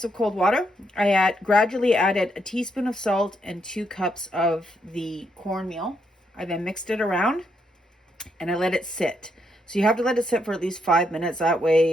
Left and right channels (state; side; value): normal; both; correlation 0.77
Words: of cold water. I gradually added a teaspoon of salt and 2 cups of the cornmeal. I then mixed it around and I let it sit. So you have to let it sit for at least 5 minutes. That